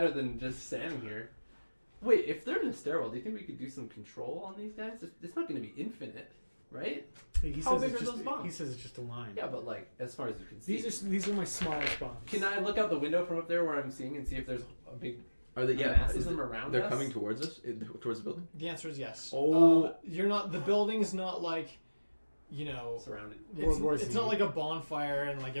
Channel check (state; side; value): inverted; both; correlation -1.00